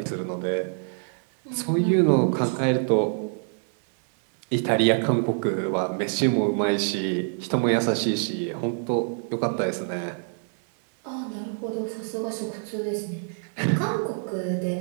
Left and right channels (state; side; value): silent; left; 61 dB below the other